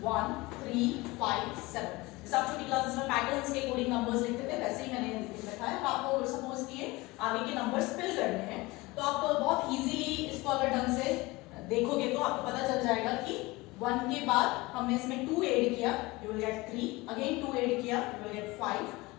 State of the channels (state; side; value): quieter; right; 22.1 dB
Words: 1, 3, 5, 7. जैसे आप छोटी क्लासेस में पैटर्न्स के अकॉर्डिंग नंबर्स लिखते थे वैसे ही मैंने लिख रखा है. आपको सपोज किए आगे के नंबर्स फिल करने हैं तो आप बहुत इजीली इसको अगर ढंग से देखोगे तो आपको पता चल जाएगा कि 1 के बाद हमने इसमें 2 ऐड किया, you will get 3. Again 2 add किया, you will get 5.